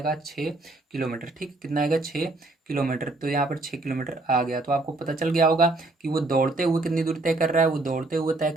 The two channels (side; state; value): left; quieter; 3.0 dB